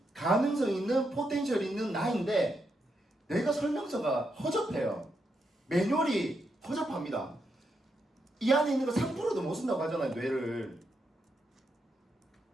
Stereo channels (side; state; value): both; normal; correlation 0.82